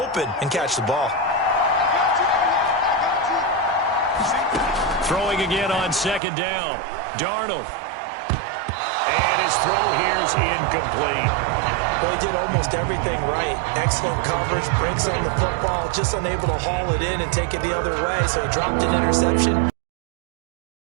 and catch the ball. Throwing again on 2nd down. Darnold. And his throw here is incomplete. Well, he did almost everything right. Excellent coverage, breaks on the football, just unable to haul it in and take it the other way, so he dropped an interception.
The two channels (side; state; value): left; drops out; at 6.2 s